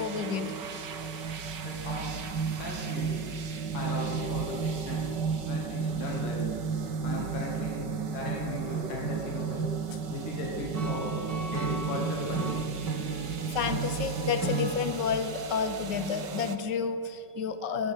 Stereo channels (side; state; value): left; late; 5.3 ms